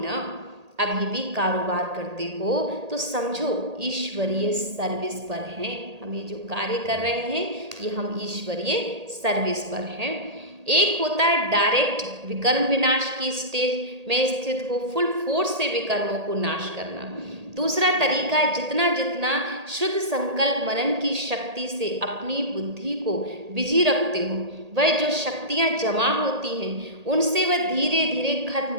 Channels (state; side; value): late; left; 1.8 ms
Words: अभी भी कारोबार करते हो तो समझो ईश्वरीय सर्विस पर हैं। हम ये जो कार्य कर रहे हैं ये हम ईश्वरीय सर्विस पर हैं। एक होता है डायरेक्ट विकर्म विनाश की स्टेज में स्थित हो, फुल फोर्स से विकर्मों को नाश करना। दूसरा तरीका है जितना जितना शुद्ध संकल्प मनन की शक्ति से अपनी बुद्धि को बिजी रखते हो, वह जो शक्तियाँ जमा होती हैं उनसे वह धीरे धीरे खत्म